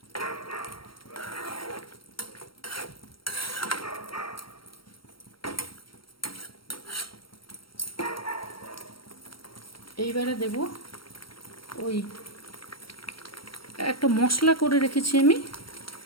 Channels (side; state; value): right; late; 0.74 ms